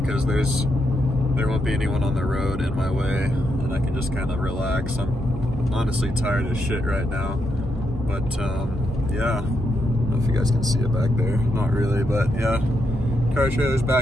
there won't be anyone on the road in my way and I can just kind of relax. I'm honestly tired as shit right now, but yeah, I don't know if you guys can see it back there. Not really, but yeah, car trailer's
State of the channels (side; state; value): both; normal; correlation 0.82